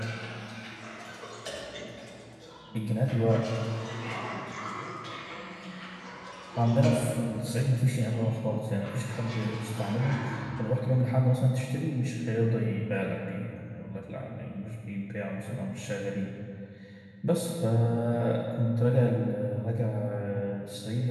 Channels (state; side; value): identical; both; correlation 1.00